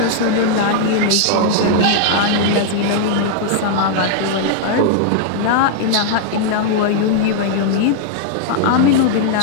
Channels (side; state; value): both; different; correlation -0.01